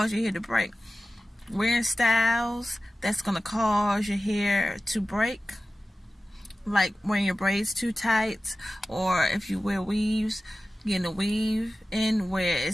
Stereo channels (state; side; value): normal; both; correlation 0.96